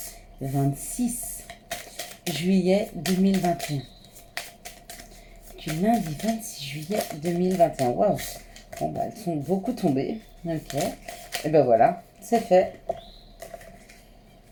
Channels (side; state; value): both; identical; correlation 1.00